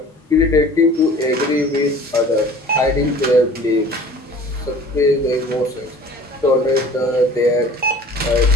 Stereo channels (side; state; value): both; normal; correlation 0.46